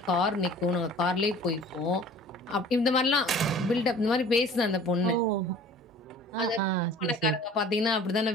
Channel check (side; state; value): both; normal; correlation 0.46